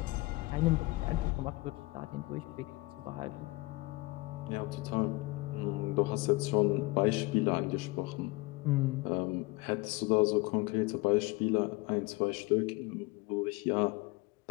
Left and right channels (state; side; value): quieter; right; 23.4 dB